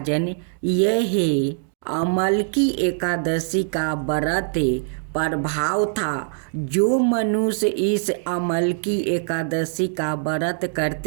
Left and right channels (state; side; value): silent; left; 64 dB below the other